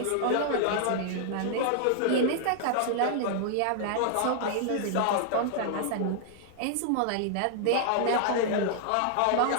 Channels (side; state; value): both; different; correlation -0.01